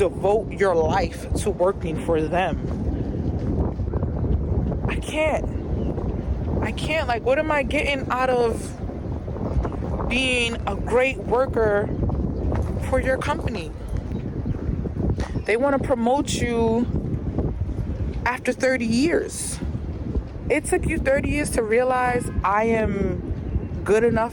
your life to working for them. I can't. Like, what am I getting out of being a great worker for your company? They want to promote you after 30 years. It took you 30 years to realize I am good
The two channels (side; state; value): both; identical; correlation 1.00